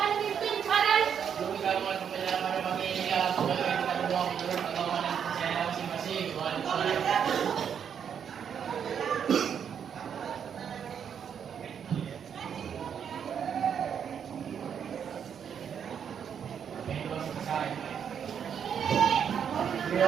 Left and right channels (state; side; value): quieter; left; 7.9 dB